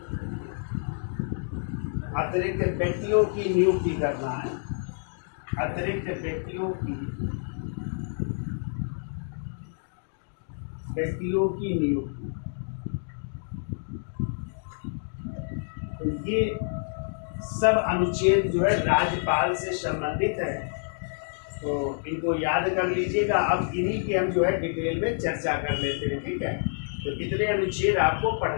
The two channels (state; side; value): silent; right; digital silence